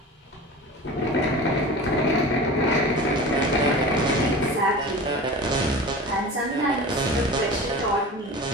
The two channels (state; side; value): normal; both; correlation 0.34